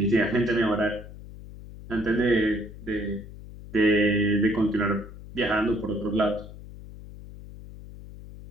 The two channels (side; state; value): left; noise; hum, 15 dB below the sound